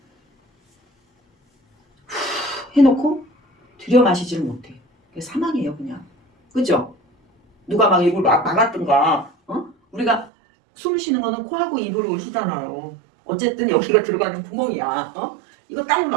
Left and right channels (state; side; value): drops out; left; at 10.3 s